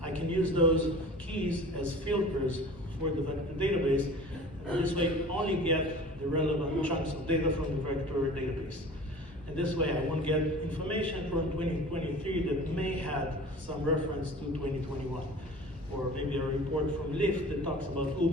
I can use those keys as filters for the database. This way, only get the relevant chunks of data from the vector database. And this way, I won't get information from 2023 that may have some reference to 2021. Or maybe a report from Lyft that talks about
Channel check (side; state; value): both; normal; correlation 0.41